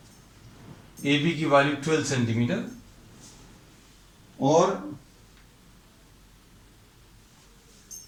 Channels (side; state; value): both; identical; correlation 1.00